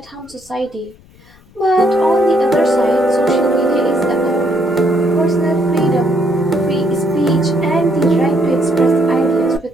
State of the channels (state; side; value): noise; left; rumble, 27 dB below the sound